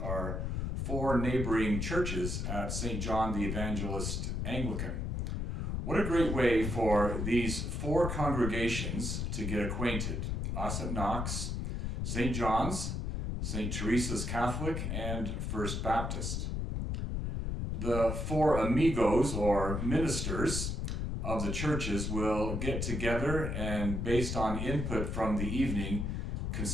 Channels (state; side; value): noise; left; rumble, 2 dB below the sound